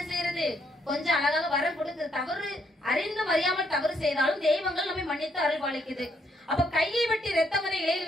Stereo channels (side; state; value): both; normal; correlation 0.73